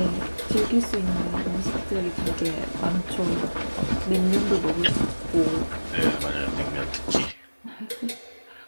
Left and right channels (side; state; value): both; inverted; correlation -1.00